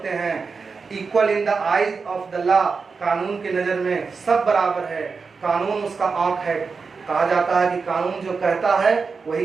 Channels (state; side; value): quieter; left; 4.9 dB